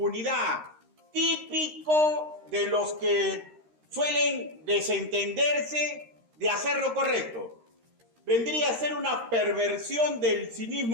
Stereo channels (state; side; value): late; left; 13 ms